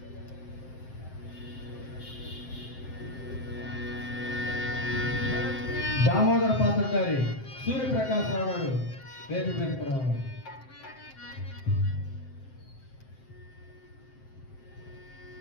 దామోదర పాత్రధారి సూర్యప్రకాశరావు గారు వేదిక మీదకి రావాలి.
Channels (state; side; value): late; right; 7.7 ms